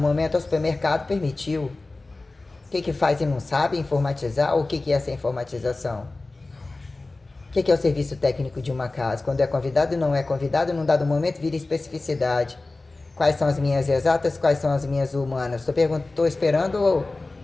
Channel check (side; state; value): right; quieter; 3.2 dB